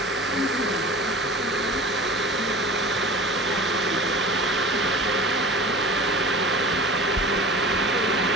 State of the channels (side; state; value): both; normal; correlation 0.38